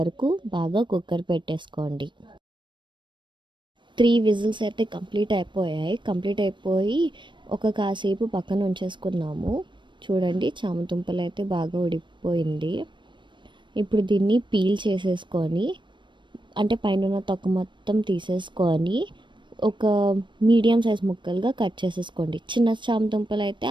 బాగా కుక్కర్ పెట్టేసుకోండి. 3 విజిల్స్ అయితే కంప్లీట్ అయిపోయి ఒక కాసేపు పక్కన ఉంచేసుకున్నాము. చూడండి, చామదుంపలు అయితే బాగా ఉడికిపోయింది. ఇప్పుడు దీన్ని పీల్ చేసేసుకొని అంటే పైన తొక్క మొత్తం తీసేసుకొని ఒక మీడియం సైజ్ ముక్కలుగా కట్ చేసేసుకోండి. చిన్న చామదుంపలు అయితే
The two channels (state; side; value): late; left; 0.23 ms